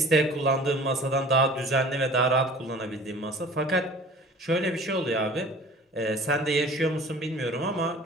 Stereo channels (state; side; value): normal; both; correlation 0.45